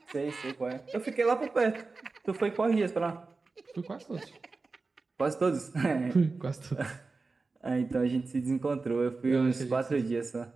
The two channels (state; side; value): quieter; left; 3.9 dB